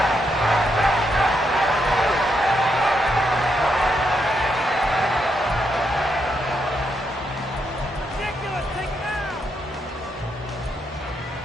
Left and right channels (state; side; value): normal; both; correlation 0.79